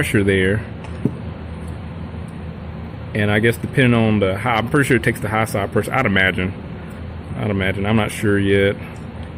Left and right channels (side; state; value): both; identical; correlation 1.00